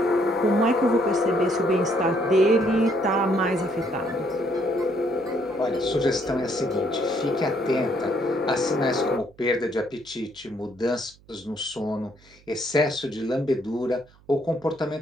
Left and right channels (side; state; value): right; noise; hum, 28 dB below the sound